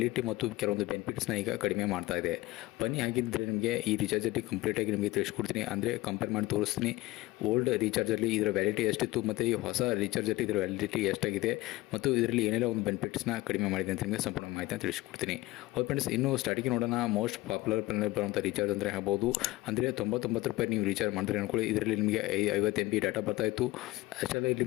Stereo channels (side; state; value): right; quieter; 19.1 dB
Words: ಮತ್ತು ಕೆಲವೊಂದು ಬೆನಿಫಿಟ್ಸ್ನ ಈಗ ಕಡಿಮೆ ಮಾಡ್ತಾ ಇದೆ. ಬನ್ನಿ ಹಾಗಿದ್ದರೆ ನಿಮಗೆ ಈ ರೀಚಾರ್ಜಲ್ಲಿ ಕಂಪ್ಲೀಟಾಗಿ ನಿಮಗೆ ತಿಳಿಸ್ಕೊಡ್ತೀನಿ. ಅಂದರೆ ಕಂಪೇರ್ ಮಾಡಿ ತೋರಿಸ್ತೀನಿ ಓಲ್ಡ್ ರೀಚಾರ್ಜಲ್ಲಿ ಇದರ ವ್ಯಾಲಿಡಿಟಿ ಎಷ್ಟಿತ್ತು ಮತ್ತು ಈ ಹೊಸ ರೀಚಾರ್ಜಲ್ಲಿ ಇದರ ವ್ಯಾಲಿಡಿಟಿ ಎಷ್ಟಾಗಿದೆ ಮತ್ತು ಇದರಲ್ಲಿ ಏನೆಲ್ಲ ಒಂದು ಬೆನಿಫಿಟ್ಸ್ನ ಕಡಿಮೆ ಮಾಡಿದೆ ಅಂತ ನಿಮಗೆ ಸಂಪೂರ್ಣ ಮಾಹಿತಿನ ತಿಳಿಸ್ಕೊಡ್ತೀನಿ. ಹೌದು ಫ್ರೆಂಡ್ಸ್, ಇನ್ನು ಸ್ಟಾರ್ಟಿಂಗ್ ನೋಡೋಣ. ಮೋಸ್ಟ್ ಪಾಪ್ಯುಲರ್ ಪ್ಲಾನಲ್ಲಿ ಬರುವಂಥ ರೀಚಾರ್ಜ್ ಅಂದರೆ ಹೇಳ್ಬೋದು. ಅಂದರೆ 99 ರೂಪಾಯಿ ನೀವು ರೀಚಾರ್ಜ್ ಮಾಡಿದ್ರೆ ಅನ್ಕೊಳ್ಳಿ, ಇದರಲ್ಲಿ ನಿಮಗೆ 50 MB ಡಾಟಾ ಬರ್ತಾಯಿತ್ತು. ಅಷ್ಟೆಲ್ಲ ಇಲ್ಲಿ